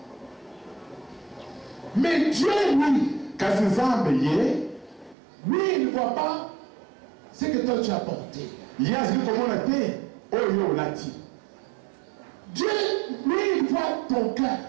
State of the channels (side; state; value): left; drops out; at 5.2 s